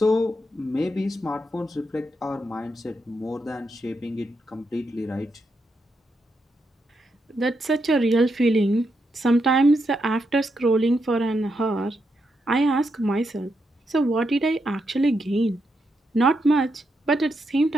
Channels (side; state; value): both; normal; correlation 0.82